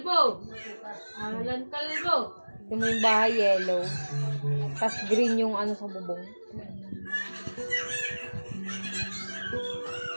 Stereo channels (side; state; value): both; inverted; correlation -1.00